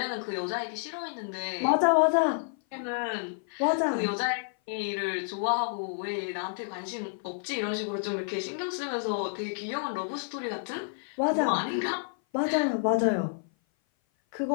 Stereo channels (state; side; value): silent; right; 55 dB below the other